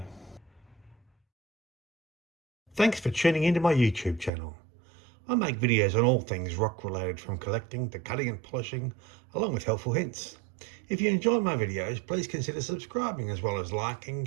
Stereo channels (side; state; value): left; drops out; at 4.3 s